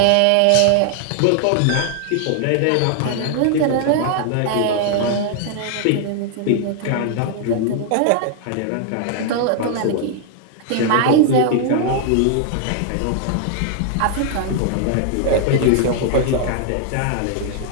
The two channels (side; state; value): both; different; correlation 0.00